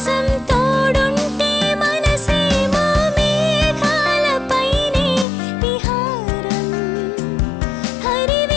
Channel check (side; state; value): right; drops out; at 5.2 s